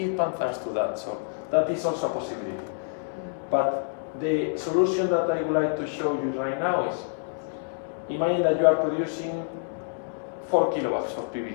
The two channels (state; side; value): silent; right; digital silence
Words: pump thanks to that. So that is also a possibility. But the solution that I would like to show you right now is, imagine that you are producing 4 kilowatts of